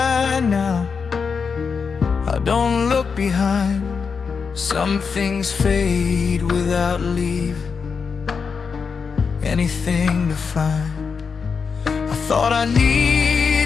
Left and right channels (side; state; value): right; quieter; 5.6 dB